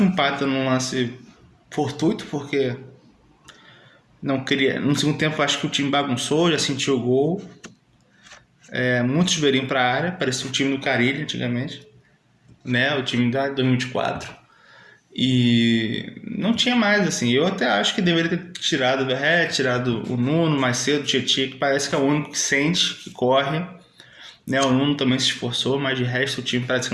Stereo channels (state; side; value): identical; both; correlation 1.00